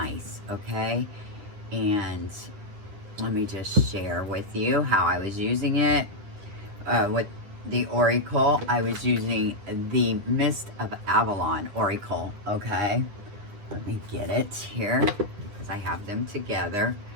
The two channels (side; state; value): left; late; 9.9 ms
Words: okay? And let me just share with you how I was using it. With the Oracle, I was using the Mist of Avalon Oracle, okay? Let me get it here, because I have them together.